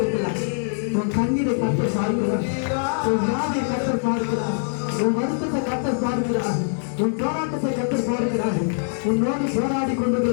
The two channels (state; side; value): silent; right; 58 dB below the other